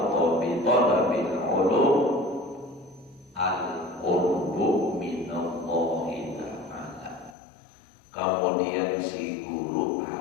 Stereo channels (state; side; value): drops out; right; at 7.4 s